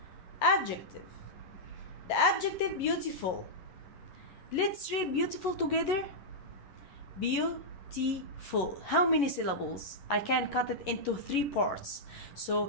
Adjective. The adjective beautiful. Let's read beautiful together. Beautiful. How many syllables? I can cut it into three parts.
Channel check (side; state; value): right; late; 11 ms